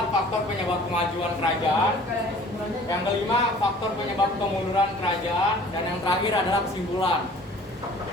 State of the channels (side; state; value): both; normal; correlation 0.50